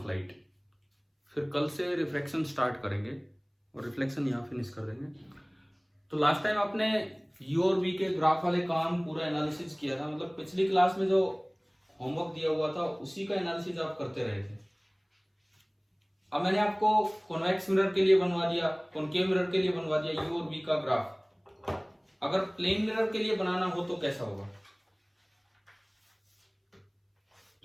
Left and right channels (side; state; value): both; identical; correlation 1.00